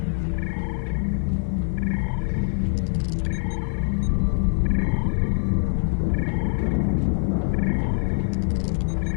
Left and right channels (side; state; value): right; silent; digital silence